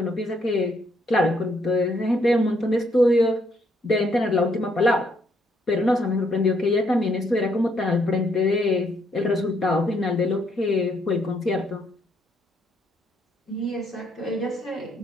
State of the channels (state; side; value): normal; both; correlation 0.72